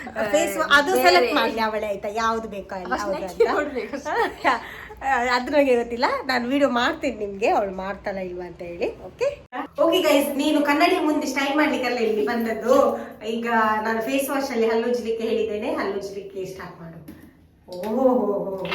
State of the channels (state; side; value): identical; both; correlation 1.00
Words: ಫೇಸ್ ಅದು ಸೆಲೆಕ್ಟ್ ಮಾಡಲಿ ಅವಳೇ ಆಯ್ತಾ, ಯಾವ್ದು ಬೇಕೋ ಅಲ್ಲ ಅದು ನನಗೆ ಗೊತ್ತಿಲ್ಲ. ನಾನು ವಿಡಿಯೋ ಮಾಡ್ತೀನಿ ನಿಮ್ಗೆ, ಅವಳು ಮಾಡ್ತಾಳ ಇಲ್ವಾ ಅಂತ ಹೇಳಿ. ಓಕೆ ಗೈಸ್, ನೀನು ಕನ್ನಡಿ ಮುಂದೆ ಸ್ಟೈಲ್ ಮಾಡ್ಲಿಕ್ಕೆಲ್ಲ ಇಲ್ಲಿ ಬಂದದ್ದು. ಈಗ ನಾನು ಫೇಸ್ ವಾಶ್ ಅಲ್ಲಿ ಹಲ್ಲುಜ್ಲಿಕ್ಕೆ ಹೇಳಿದ್ದೇನೆ, ಹಲ್ಲುಜ್ಲಿಕ್ಕೆ ಸ್ಟಾರ್ಟ್ ಮಾಡು. ಓಹೋ,